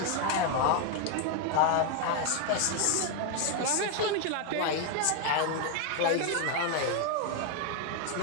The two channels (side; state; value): both; different; correlation 0.01